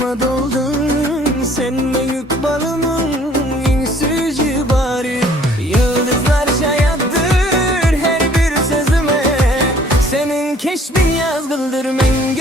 doldun, sen büyük balımın en süzü bari. Yıldızlar şayattır her bir sözüme, senin keşfin yazgıldır men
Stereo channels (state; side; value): normal; both; correlation 0.57